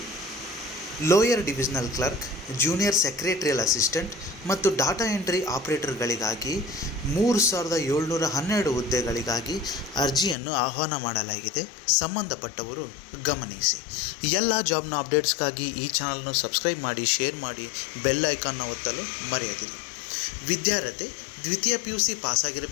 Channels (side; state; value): right; drops out; at 10.4 s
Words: lower divisional clerk, junior secretarial assistant ಮತ್ತು data entry ಆಪರೇಟರ್ಗಳಿಗಾಗಿ 3712 ಹುದ್ದೆಗಳಿಗಾಗಿ ಅರ್ಜಿಯನ್ನು ಆಹ್ವಾನ ಮಾಡಲಾಗಿದೆ. ಸಂಬಂಧಪಟ್ಟವರು ಗಮನಿಸಿ. ಎಲ್ಲ ಜಾಬ್ನ ಅಪ್ಡೇಟ್ಸ್ಗಾಗಿ ಈ ಚಾನಲ್ನ ಸಬ್ಸ್ಕ್ರೈಬ್ ಮಾಡಿ, ಶೇರ್ ಮಾಡಿ, ಬೆಲ್ ಐಕಾನ್ನ ಒತ್ತಲು ಮರೆಯದಿರಿ. ವಿದ್ಯಾರ್ಹತೆ ದ್ವಿತೀಯ PUC